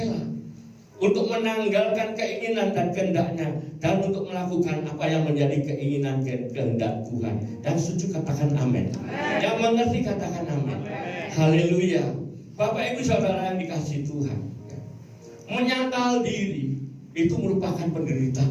untuk menanggalkan keinginan dan kehendaknya dan untuk melakukan apa yang menjadi keinginan dan kehendak Tuhan. Yang setuju katakan amin. Yang mengerti katakan amin. Haleluya. Bapak Ibu Saudara yang dikasihi Tuhan, menyangkal diri itu merupakan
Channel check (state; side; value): identical; both; correlation 1.00